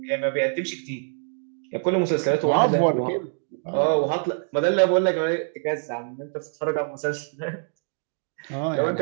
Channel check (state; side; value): silent; left; digital silence